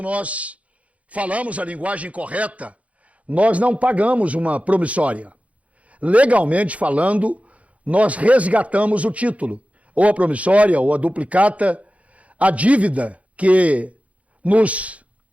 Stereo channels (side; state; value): left; late; 0.066 ms